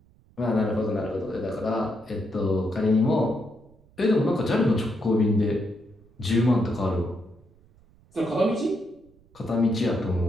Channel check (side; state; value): right; noise; rumble, 29 dB below the sound